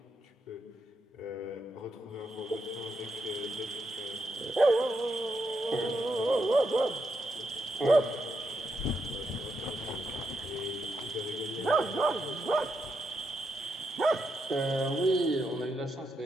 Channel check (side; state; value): both; normal; correlation 0.82